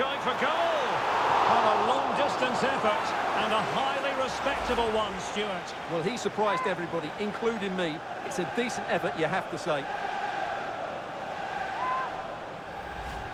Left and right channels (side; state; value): both; identical; correlation 1.00